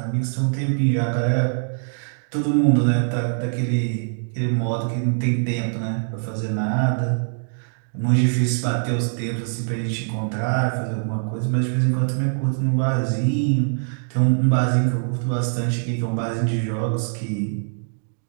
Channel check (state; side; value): silent; left; digital silence